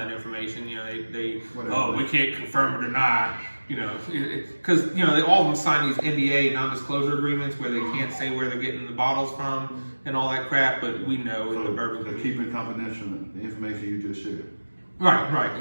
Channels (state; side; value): inverted; both; correlation -1.00